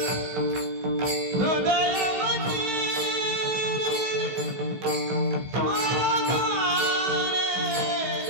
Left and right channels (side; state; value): left; late; 16 ms